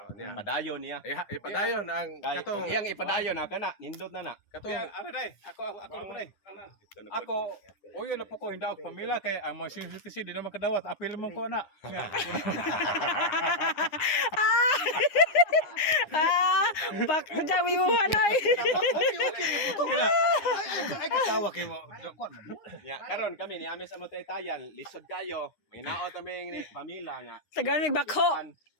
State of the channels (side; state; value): right; late; 9.7 ms